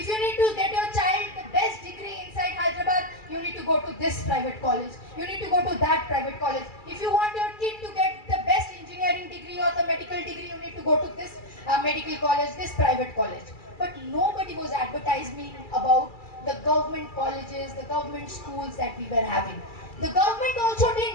you need to get your child the best degree inside Hyderabad, you need to go to this private college. You need to go to that private college. If you want your kid to get the best engineering degree or the medical degree, you need to go to this medical college, this private college. But nobody was advertising about the government colleges, the government schools that we were having. The government also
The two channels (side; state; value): right; late; 2.3 ms